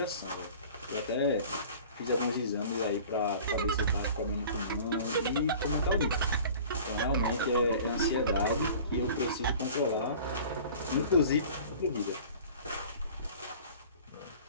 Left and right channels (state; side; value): inverted; both; correlation -0.44